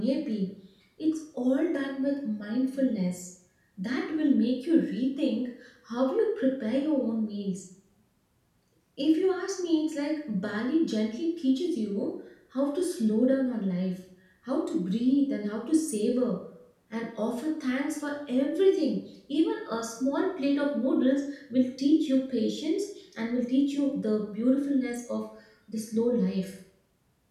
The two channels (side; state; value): both; identical; correlation 1.00